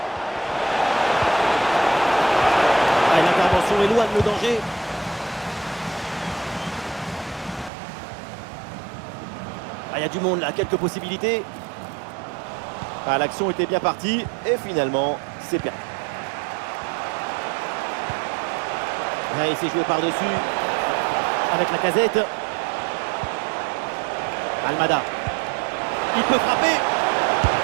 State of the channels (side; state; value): left; drops out; at 7.7 s